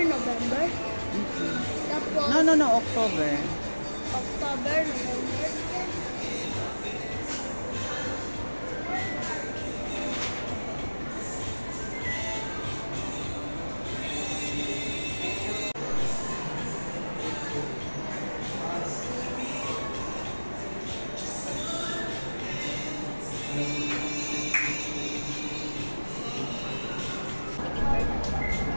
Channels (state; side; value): inverted; both; correlation -1.00